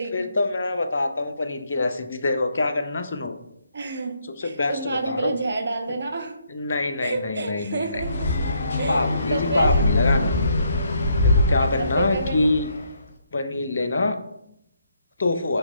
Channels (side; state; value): both; inverted; correlation -0.73